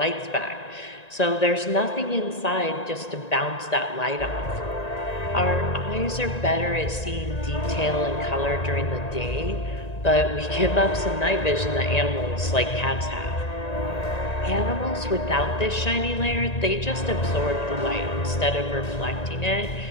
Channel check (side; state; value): right; late; 1.9 ms